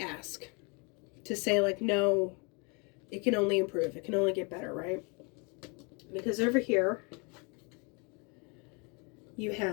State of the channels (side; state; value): right; quieter; 32.3 dB